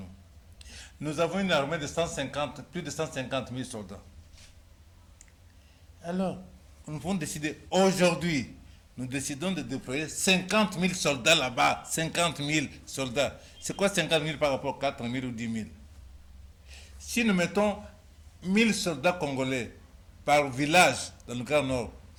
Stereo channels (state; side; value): identical; both; correlation 1.00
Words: Nous avons une armée de plus de 150 000 soldats. Alors, nous pouvons décider aujourd'hui, nous décidons de déployer 50 000 soldats là-bas. 50 000 soldats. C'est quoi 50 000 par rapport à 4 000 ou 10 000? Si nous mettons 1000 soldats congolais par village dans le Grand Nord,